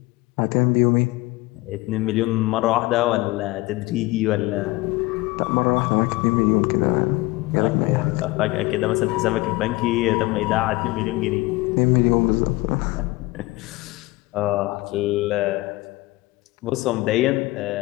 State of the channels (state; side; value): quieter; right; 21.0 dB